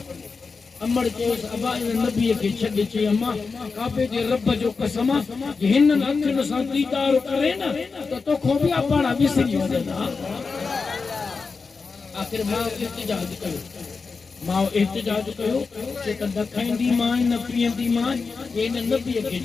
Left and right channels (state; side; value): quieter; right; 4.7 dB